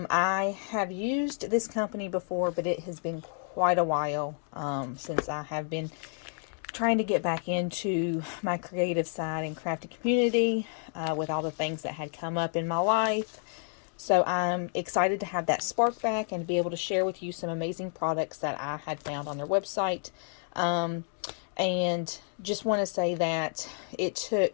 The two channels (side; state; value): right; silent; 56 dB below the other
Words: have used this company before, but it has been quite a while since I have been trying to get back into my creative side and crafting community with all the things that had come up in my life. So I'm excited to have that spark back and to be able to share with you some amazing products that I had found on their website. And just want to say that it